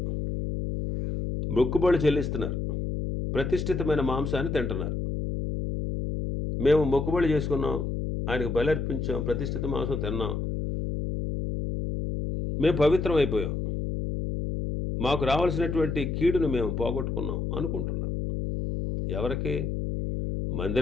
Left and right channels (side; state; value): left; noise; hum, 2 dB below the sound